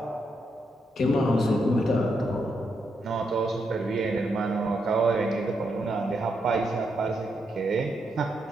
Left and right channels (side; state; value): both; normal; correlation 0.81